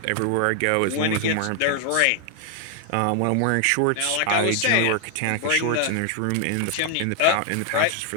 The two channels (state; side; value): different; both; correlation 0.00